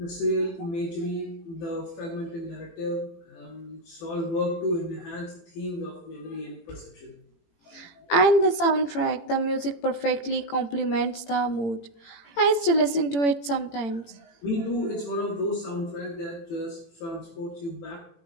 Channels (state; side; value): late; right; 18 ms